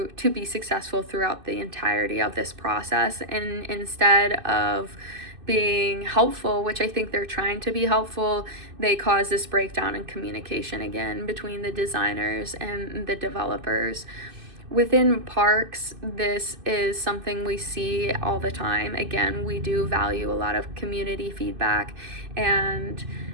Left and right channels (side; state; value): left; late; 2.6 ms